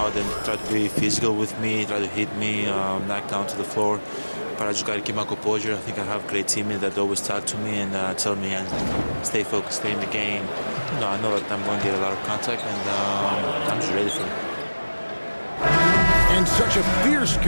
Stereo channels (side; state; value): both; inverted; correlation -1.00